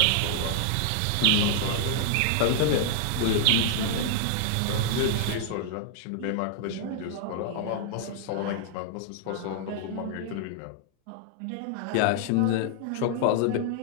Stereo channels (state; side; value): different; both; correlation -0.01